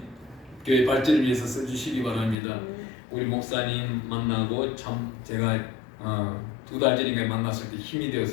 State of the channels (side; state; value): right; drops out; at 2.4 s